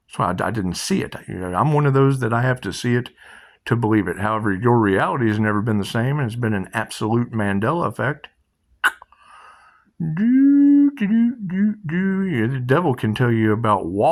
So I didn't see it. I'm one of those that I have to see it to believe it. However, your reality has never been the same, and it's been an absolute Mandela effect. Yeah, the devil can tell you about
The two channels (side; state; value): both; identical; correlation 1.00